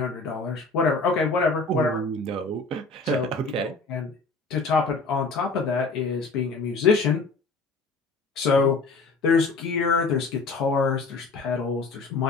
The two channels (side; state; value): right; quieter; 3.8 dB